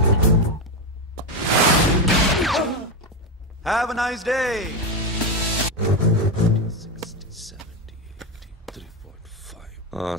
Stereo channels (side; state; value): both; normal; correlation 0.11